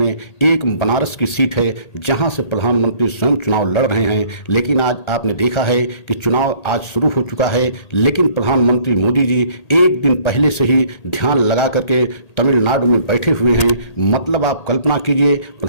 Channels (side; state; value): right; late; 1.8 ms